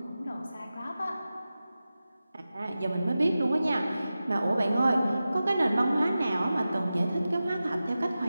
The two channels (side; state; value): both; inverted; correlation -0.94